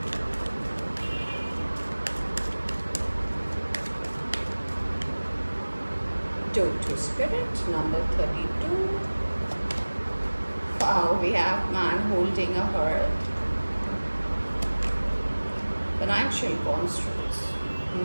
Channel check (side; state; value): both; inverted; correlation -1.00